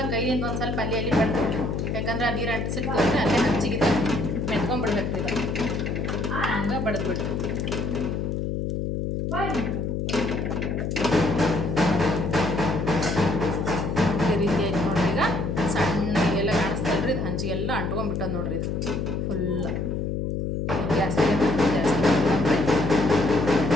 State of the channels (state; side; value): noise; left; hum, 1 dB below the sound